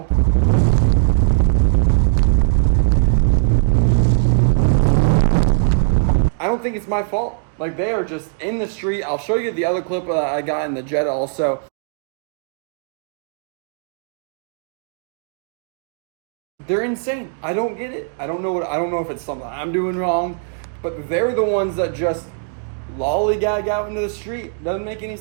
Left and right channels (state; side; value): silent; left; digital silence